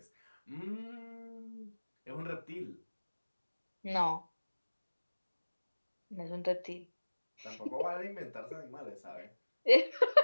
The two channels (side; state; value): both; inverted; correlation -1.00